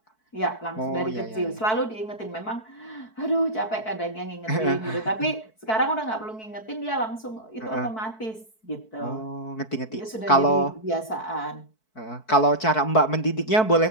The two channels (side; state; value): right; late; 4.6 ms